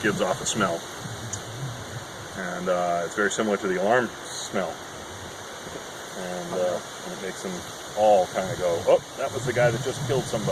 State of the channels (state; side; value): identical; both; correlation 1.00